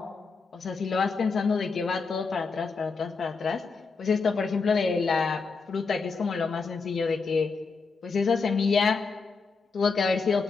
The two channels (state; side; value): quieter; right; 4.7 dB